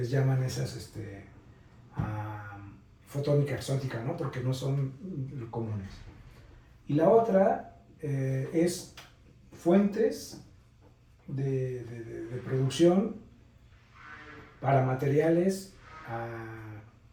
llaman esas, fotónica exótica, ¿no? Porque no son comunes. Y la otra es fuentes de producción para materiales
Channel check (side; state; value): both; identical; correlation 1.00